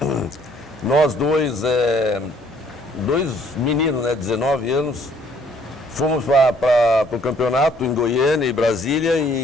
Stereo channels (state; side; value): normal; both; correlation 0.62